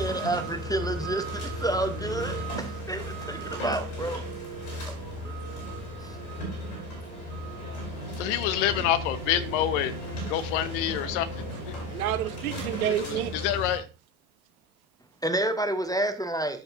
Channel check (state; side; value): normal; both; correlation 0.27